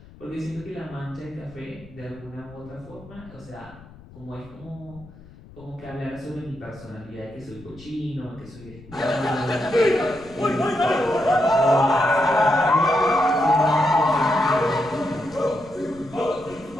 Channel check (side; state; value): left; noise; rumble, 21 dB below the sound